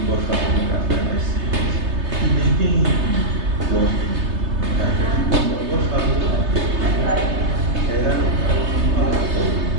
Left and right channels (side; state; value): left; late; 3.3 ms